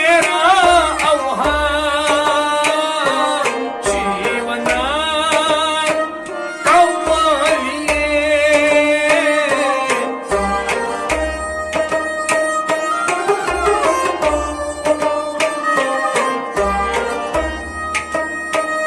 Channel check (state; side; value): identical; both; correlation 1.00